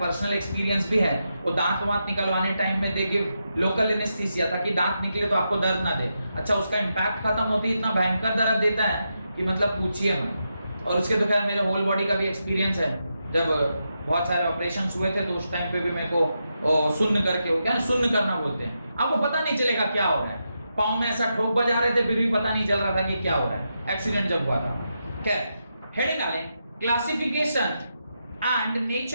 एक्सपीरियंस भी है, वो दांत वांत निकलवाने टाइम में दे गिव लोकल एनेस्थीसिया ताकि दांत निकले तो आपको दर्द ना दे। अच्छा, उसका इम्पैक्ट खत्म होती है, इतना भयंकर दर्द देता है कि मतलब पूछिए मत। और उसके तो खैर मेरे होल बॉडी का भी एक्सपीरियंस है। जब बहुत सारे ऑपरेशन हुए थे तो उस टाइम पे भी मेरे को सुन्न करके हो गया, सुन्न करना बोलते हैं, आपको पता नहीं चलेगा क्या हो रहा है। पाँव में ऐसा ठोक बजा रहे थे फिर भी पता नहीं चल रहा था कि क्या हो रहा है, एक्सीडेंट जब हुआ था। खैर, हेडिंग डालें classification and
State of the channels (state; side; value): inverted; both; correlation -0.85